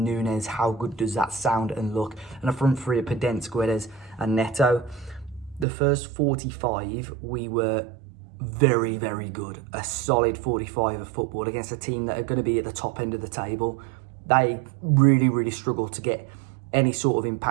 How good does that sound and look? And a front three of Podence, Guedes and Neto. The first 45, we were very, very good. A solid 45 of football against a team that are going to be at the top end of the table. They really, really struggle to get any sort of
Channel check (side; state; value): left; drops out; at 5.7 s